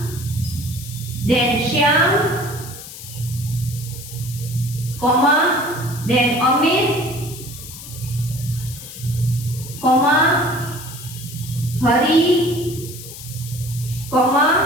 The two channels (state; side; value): noise; left; hiss, 13 dB below the sound